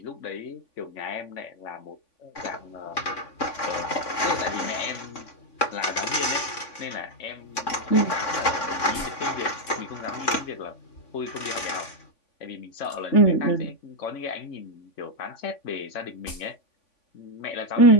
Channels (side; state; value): right; late; 3.5 ms